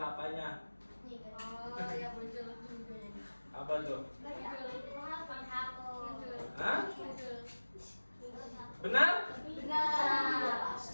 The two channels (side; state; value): both; inverted; correlation -1.00